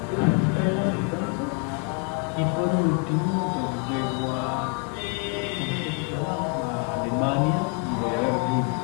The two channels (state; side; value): quieter; right; 33.7 dB